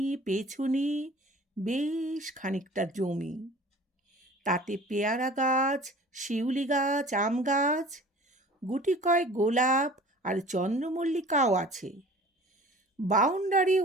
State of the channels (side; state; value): both; normal; correlation 0.45